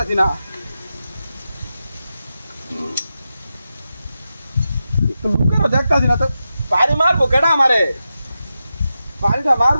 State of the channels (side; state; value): both; inverted; correlation -0.90